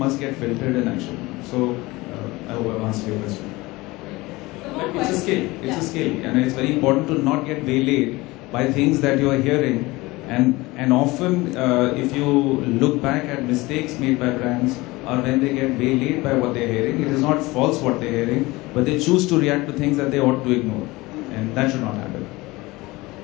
get filtered in action. So, I hope I've answered your question. It's a skill. It's a skill, and it's very important to not get waylaid by things that you are hearing. And often, if you look back at mistakes made by brands, or when they get waylaid by what they're hearing, it is not false what they're hearing, but they choose to react to things that they ought to ignore, and that should not happen.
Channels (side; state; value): right; quieter; 21.3 dB